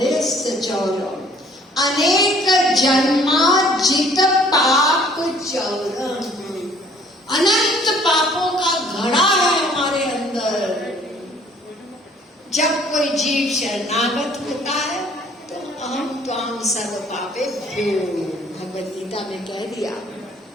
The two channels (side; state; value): both; normal; correlation 0.57